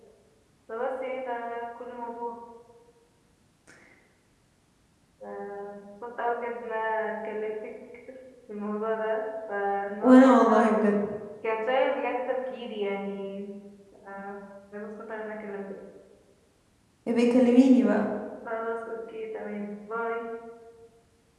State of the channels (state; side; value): identical; both; correlation 1.00